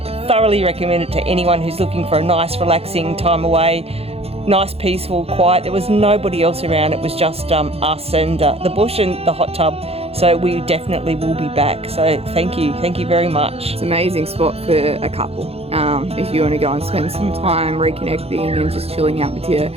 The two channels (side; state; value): left; late; 0.29 ms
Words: Thoroughly recommend it to anyone who's looking for a nice, relaxing time away. Nice, peaceful, quiet. There was nobody else around. It was just us and the bush and the hot tub. So we definitely will be back. So thank you very much. It's an amazing spot for a couple. If you want to go and spend some time reconnecting and just chilling out with your